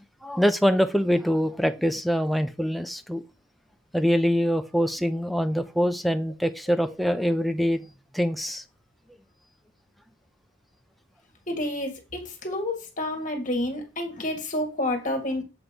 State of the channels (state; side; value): normal; both; correlation 0.86